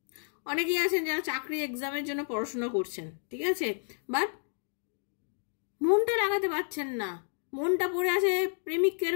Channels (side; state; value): right; silent; digital silence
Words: অনেকেই আছেন যারা চাকরি এক্সামের জন্য পড়াশোনা করছেন, ঠিক আছে, বাট মনটা লাগাতে পারছেন না। মনটা পড়ে আছে প্রেমিকের